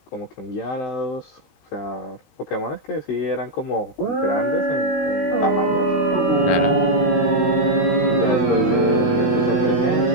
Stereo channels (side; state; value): right; late; 19 ms